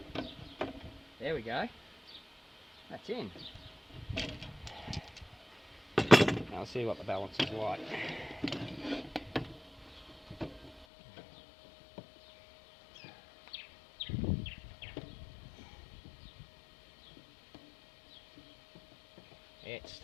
There we go. That's in. Now let's see what the balance is like. It's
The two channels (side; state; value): right; drops out; at 10.9 s